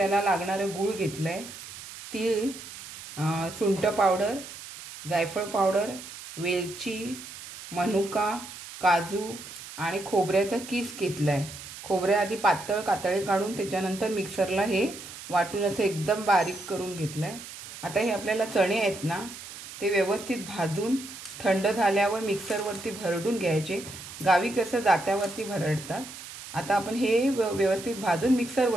लागणारे गूळ घेतलाय, तीळ, सुंठ पावडर, जायफळ पावडर, वेलची, मनुका, काजू आणि खोबऱ्याचा किस घेतलाय. खोबरे आधी पातळ कातळे काढून त्याच्यानंतर मिक्सरला हे वाटून असं एकदम बारीक करून घेतलाय. आता हे आपल्याला चणे आहेत ना, ते व्यवस्थित भाजून थंड झाल्यावर मिक्सरवरती भरडून घ्यायचे. गावी कसं जात्यावरती भरडतात. आता आपण हे व्यवस्थित भाजून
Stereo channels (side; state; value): right; noise; hiss, 13 dB below the sound